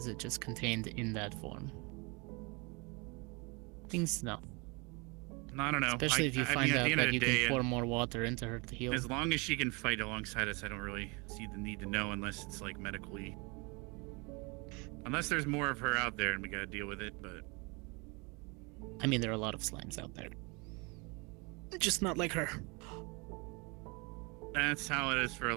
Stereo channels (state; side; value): quieter; left; 29.2 dB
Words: it just contained in that form? Things to know. I don't know. Especially if you I find mean, at out the end of that the you day, can pour more water into her to heal. As long as she can fight alongside us, I don't really see the need to know unless it's like medically. Unless there's more of her out there and we gotta deal with it, but. I mean, there are a lot of slimes out there. Just not like her. That's how it is for a